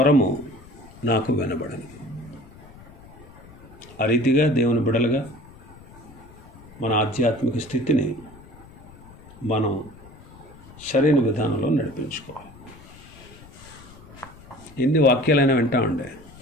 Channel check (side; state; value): left; noise; rumble, 21 dB below the sound